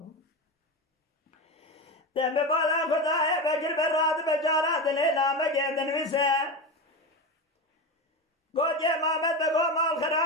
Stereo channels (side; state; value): both; normal; correlation 0.20